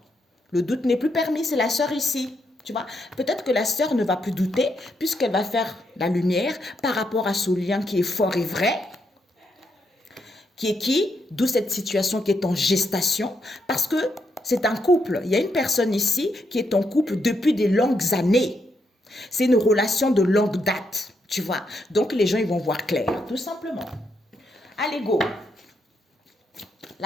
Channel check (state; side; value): normal; both; correlation 0.80